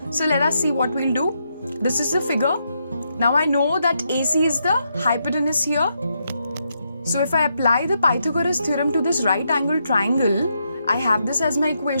So let us see what we'll do. This is the figure. Now I know that AC is the hypotenuse here. So if I apply the Pythagoras theorem to this right angle triangle, I have this as my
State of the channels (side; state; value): both; inverted; correlation -0.81